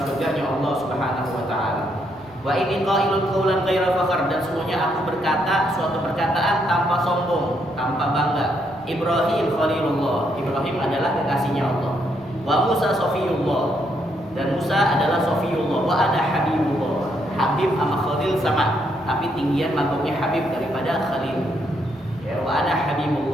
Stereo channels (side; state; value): right; noise; rumble, 27 dB below the sound